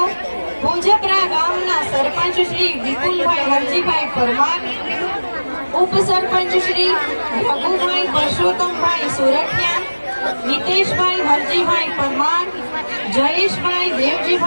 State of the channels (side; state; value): both; inverted; correlation -1.00